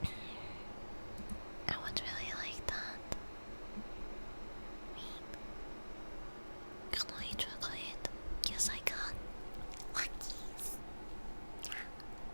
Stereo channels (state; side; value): inverted; both; correlation -1.00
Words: I would really like that. Me. Can I eat chocolate? Yes, I can. Luckies.